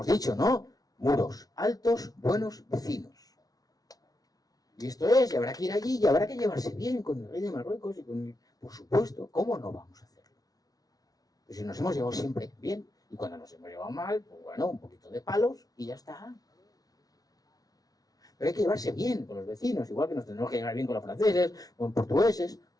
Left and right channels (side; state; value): right; late; 0.18 ms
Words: dicho, ¿no? Muros altos, buenos vecinos. Y esto es, y habrá que ir allí, y habrá que llevarse bien con el rey de Marruecos y con... Por supuesto, ¿cómo no vamos a hacerlo? Pues si nos hemos llevado siempre bien, y cuando nos hemos llevado mal, pues bueno, un poquito de palos y ya está. Pero hay que llevarse bien con los vecinos, igual que nos tenemos que llevar bien con los franceses, con portugueses,